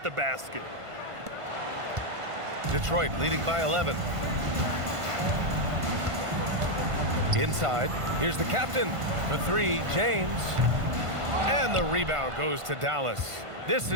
the basket. Detroit leading by 11. Inside. Here's the captain. For three, James. And the rebound goes to Dallas. This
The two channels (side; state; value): left; late; 1.5 ms